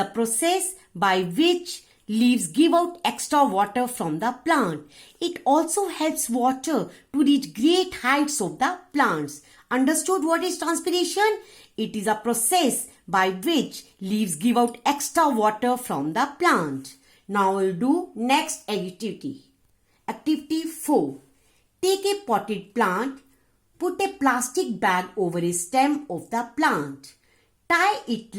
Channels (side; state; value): both; identical; correlation 1.00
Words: process by which leaves give out extra water from the plant. It also helps water to reach great heights of the plants. Understood what is transpiration? It is a process by which leaves give out extra water from the plant. Now we'll do next activity. Activity 4. Take a potted plant. Put a plastic bag over a stem of the plant. Tie it